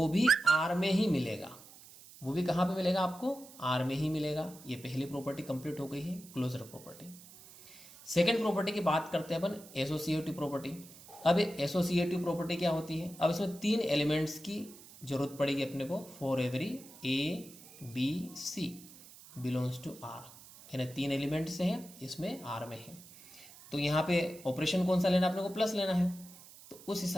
भी R में ही मिलेगा। वो भी कहाँ पे मिलेगा? आपको R में ही मिलेगा। ये पहली प्रॉपर्टी कंप्लीट हो गई है, क्लोजर प्रॉपर्टी। सेकेंड प्रॉपर्टी की बात करते हैं अपन, एसोसिएटिव प्रॉपर्टी। अब एसोसिएटिव प्रॉपर्टी क्या होती है? अब इसमें 3 एलिमेंट्स की जरूरत पड़ेगी अपने को। For every A B C belongs to R, यानी 3 एलिमेंट्स हैं, इसमें R में है। तो यहाँ पे ऑपरेशन कौन सा लेना? अपने को प्लस लेना है। तो उस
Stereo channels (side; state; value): right; noise; hiss, 19 dB below the sound